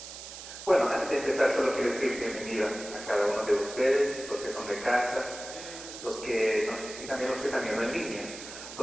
bueno, antes de empezar solo quiero decir bienvenida a cada uno de ustedes, los que son de casa, y también los que están viendo en línea.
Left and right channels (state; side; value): noise; right; hiss, 12 dB below the sound